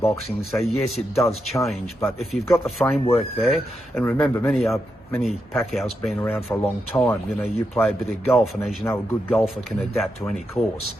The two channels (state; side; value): normal; both; correlation 0.85